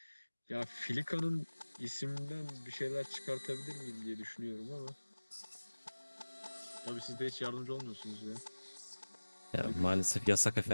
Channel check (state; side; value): inverted; both; correlation -1.00